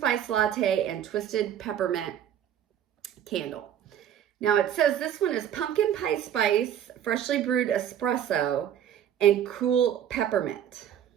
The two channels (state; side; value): quieter; left; 10.0 dB